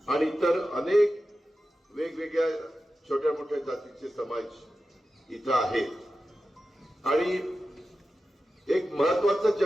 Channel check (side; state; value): both; normal; correlation 0.93